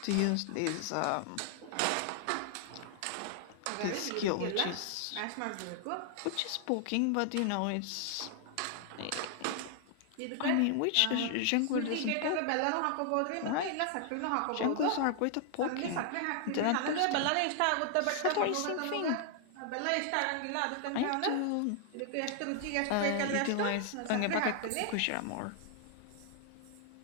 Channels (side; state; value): both; different; correlation 0.00